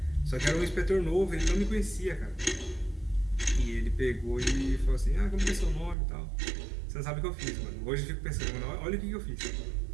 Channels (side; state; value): left; drops out; at 6.0 s